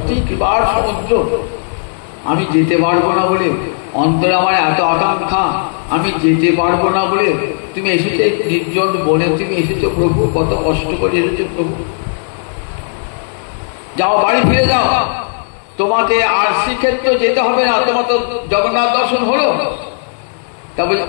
কৃপার সমুদ্র। আমি যেতে পারবো না বলে, অন্তরে আমার এত আকাঙ্ক্ষা, আমি যেতে পারবো না বলে তুমি এসেছো নির্জন বনে, তুমি এসেছো প্রভু, কত কষ্ট করে এসেছো প্রভু। যাও, বাড়ি ফিরে যাও, তোমাকে আর শ্রীক্ষেত্র যেতে হবে না, তোমার তো জগন্নাথ দর্শন হলো। তা বলে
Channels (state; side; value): silent; right; digital silence